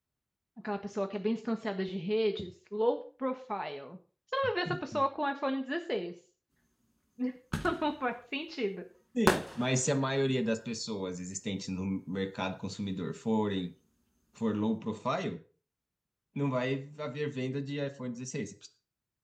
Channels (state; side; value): identical; both; correlation 1.00